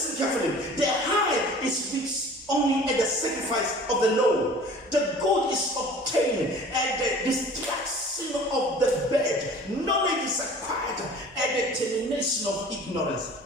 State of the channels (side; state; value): both; normal; correlation 0.45